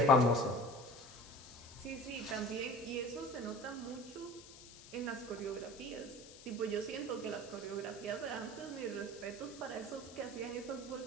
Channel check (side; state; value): left; noise; hiss, 17 dB below the sound